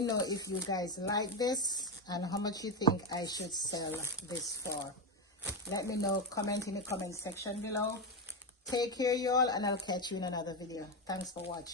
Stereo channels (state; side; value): normal; both; correlation 0.11